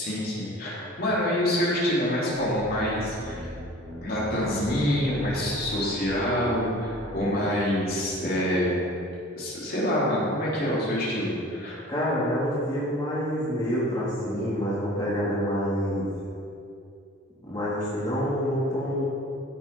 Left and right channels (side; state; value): both; normal; correlation 0.45